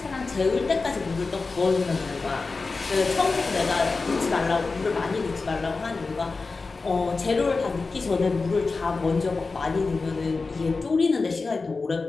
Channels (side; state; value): right; quieter; 4.0 dB